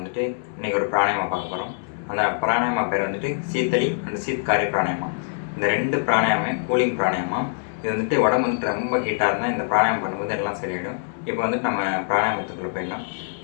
இன்றைக்கி ஒரு பிராணாயாமா பார்க்க போகிறோம். அந்த பிராணாயாமா பேர் வந்துட்டு சீத்தளி அண்ட் சீத்காரி பிராணாயாமா. இந்த 2 பிராணாயாமே கூலிங் பிராணாயாமா. இது வந்துட்டு உடம்பு வந்துட்டு ரொம்ப ஹீட்டாக இருந்தால் இந்த பிராணாயாமம் பண்ணும்போது எல்லாம் சரியாயிடும். இப்போ வந்துட்டு நம்ம பிராணாயாமத்துக்குள்ளே போயிடலாம்.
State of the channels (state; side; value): silent; right; 62 dB below the other